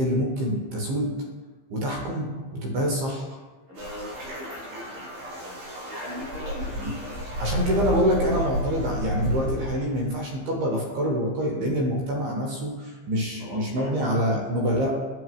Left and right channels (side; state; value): left; late; 15 ms